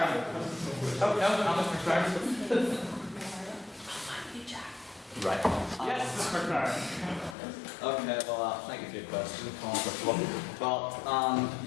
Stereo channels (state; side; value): drops out; right; at 7.4 s